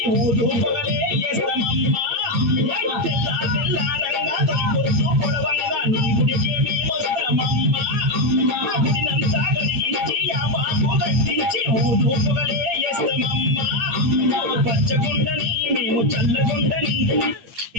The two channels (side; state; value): left; late; 8.6 ms